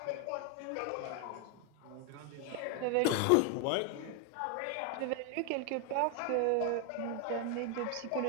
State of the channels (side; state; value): both; different; correlation 0.01